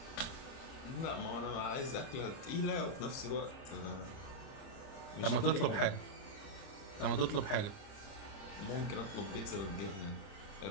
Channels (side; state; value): right; late; 30 ms